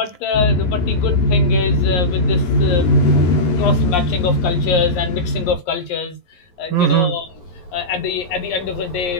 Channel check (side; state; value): right; late; 11 ms